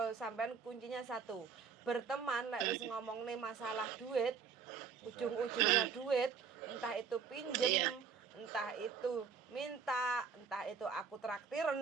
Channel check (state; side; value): quieter; left; 6.0 dB